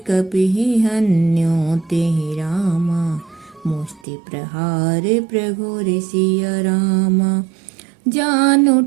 कपिहि हन्यो तेहि रामा, मुष्टि प्रहार प्रघोर सिया रामा। जानु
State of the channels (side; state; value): left; drops out; at 4.0 s